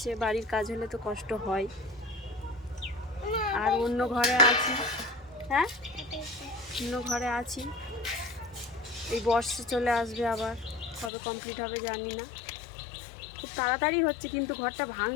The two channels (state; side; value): drops out; right; at 11.1 s